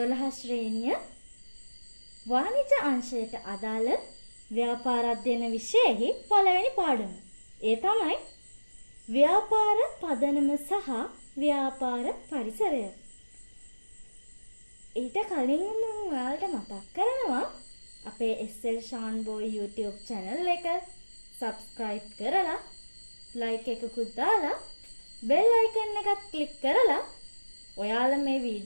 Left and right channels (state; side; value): inverted; both; correlation -1.00